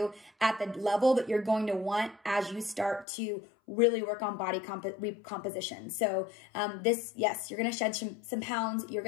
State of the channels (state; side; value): drops out; right; at 3.1 s